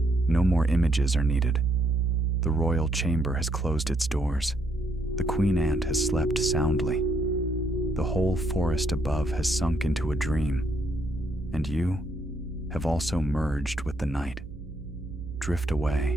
No more images are needed. The royal chamber has closed its doors. The queen ant has slept soundly. The whole forest above has sunk into a dream. And you have also merged with the night. Drift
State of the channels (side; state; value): right; noise; hum, 16 dB below the sound